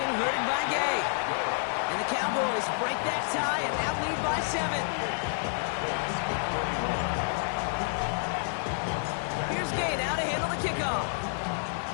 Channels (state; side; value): silent; right; digital silence